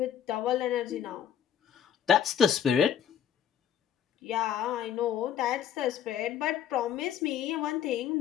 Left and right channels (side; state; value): right; quieter; 9.2 dB